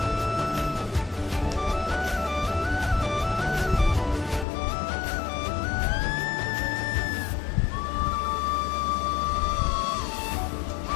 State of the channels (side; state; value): right; drops out; at 4.5 s